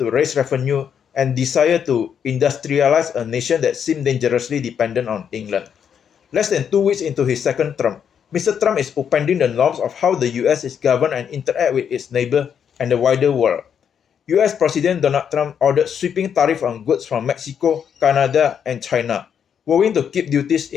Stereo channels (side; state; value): right; quieter; 7.9 dB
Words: to raise revenue and desire to industrialize a nation that seemed dangerously dependent on England. Less than 2 weeks into his second term, Mr. Trump is upending the norms of how the US is governed and interact with its neighbor and the wider world. US President Donald Trump ordered sweeping tariffs on goods from Mexico, Canada, and China, vowing to keep duties